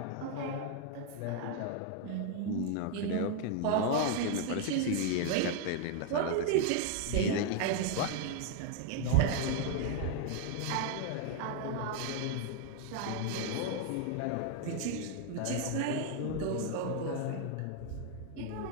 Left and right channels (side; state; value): both; different; correlation 0.00